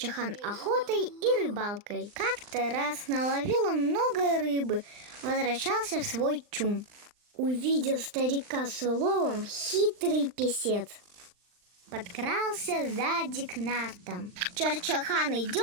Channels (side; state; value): left; late; 39 ms